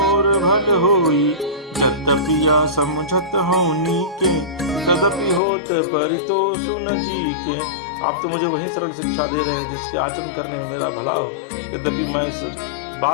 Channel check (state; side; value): drops out; right; at 5.4 s